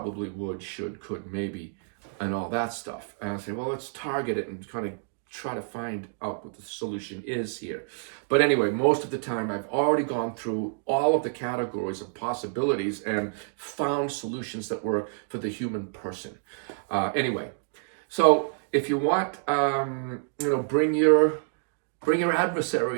would, should, could, maybe, and all that stuff. And I say, well, let's target it and kind of try to find out what the solution is here. But anyway, most of the time I've already gone through all of the categories of possibilities and found solutions that work for the human person. Anyway, so if you want, bring your Bring your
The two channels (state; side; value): silent; left; digital silence